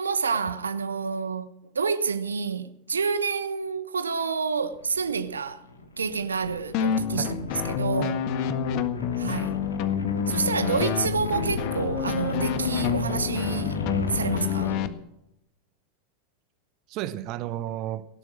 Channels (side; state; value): both; inverted; correlation -0.41